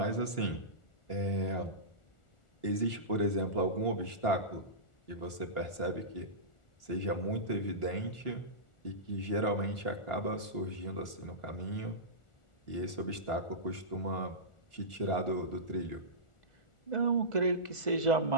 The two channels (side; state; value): right; late; 1.4 ms